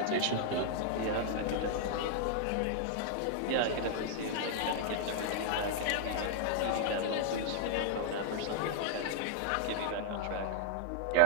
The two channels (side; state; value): both; different; correlation -0.01